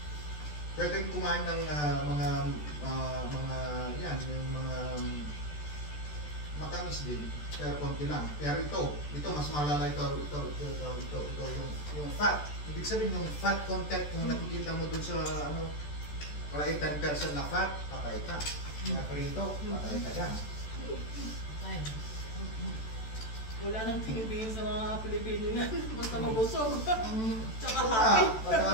Pwedeng kumain ng mga yan, yung mga matamis din, pero konti lang. Pero ito mas malala ito yung fat. Ibig sabihin yung fat content kung nakikita mo dun sa ano, kalay 10% na fat, patay ka. Mga prito, patay ka dyan. Wala nang tinibigin sa mga Pilipino yan. Basta mabusog. Tsaka happy.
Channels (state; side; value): late; right; 14 ms